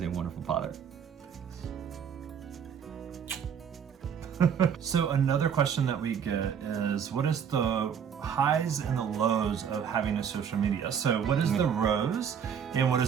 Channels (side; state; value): left; quieter; 7.7 dB